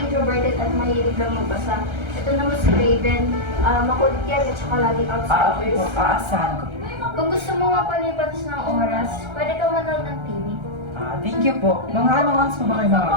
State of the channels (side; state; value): left; late; 1.3 ms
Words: at mahilig lang magbasa. Ito naman si Raven, makulit yan at saka laging outside. Okay po. Aasahan ko. Kung gusto mo mapalipas ng oras, pwede ka manood ng TV. Thank you po. Mga anong oras po ba kayo